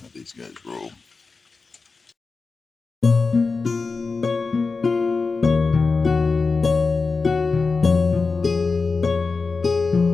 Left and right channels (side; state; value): right; quieter; 4.3 dB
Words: how these guys roll.